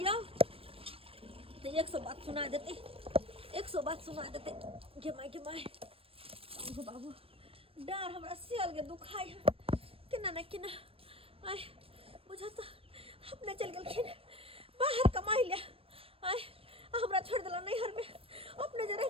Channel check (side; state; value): left; late; 0.27 ms